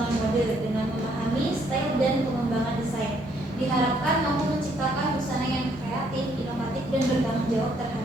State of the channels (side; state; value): both; normal; correlation 0.69